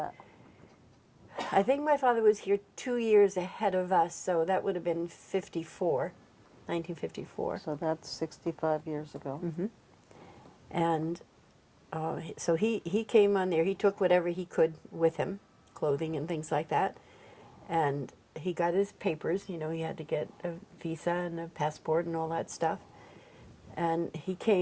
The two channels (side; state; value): both; identical; correlation 1.00